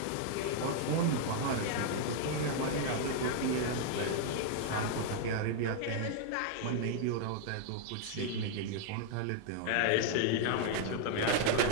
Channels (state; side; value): different; both; correlation 0.00